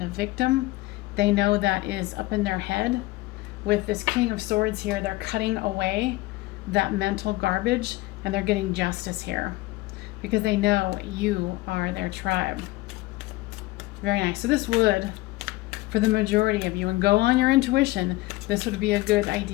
a victim, they know that is up in their head. With this King of Swords here, they're cutting away that mental garbage and they're getting justice here because they know you are their tribe. Very nice. So this would, for the majority of you, and go on your intuition, this would be a good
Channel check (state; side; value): quieter; right; 19.5 dB